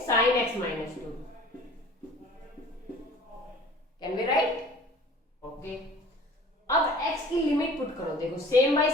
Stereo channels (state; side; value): normal; both; correlation 0.46